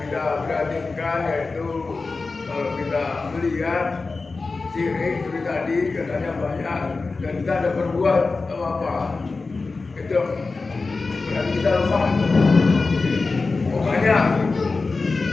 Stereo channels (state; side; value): quieter; right; 3.9 dB